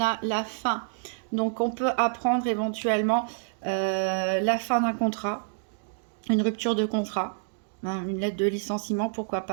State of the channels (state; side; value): silent; left; digital silence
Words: la fin. Donc, on peut apprendre éventuellement la fin d'un contrat. Une rupture de contrat, hein, une lettre de licenciement, pourquoi